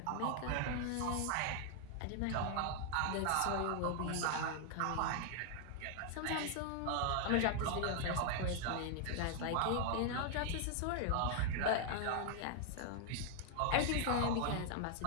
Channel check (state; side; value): different; both; correlation 0.00